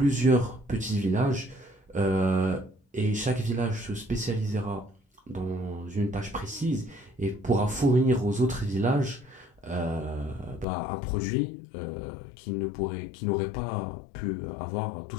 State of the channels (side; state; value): right; drops out; at 10.7 s